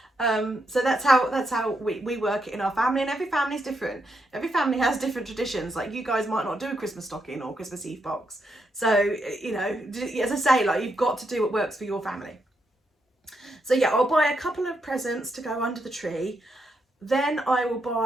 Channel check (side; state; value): both; normal; correlation 0.81